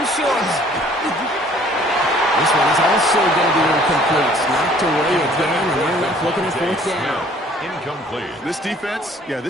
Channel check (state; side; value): normal; both; correlation 0.56